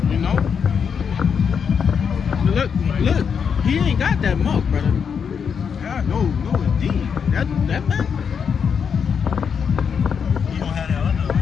You know? Look, he ain't got that mark, brother. Yeah, no, indeed. That man. You don't have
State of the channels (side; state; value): right; quieter; 6.8 dB